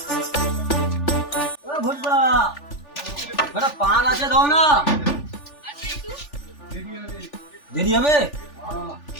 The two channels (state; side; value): late; right; 3.4 ms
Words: এ ভোজবা একটা পান আছে দাও না। দেরি হবে?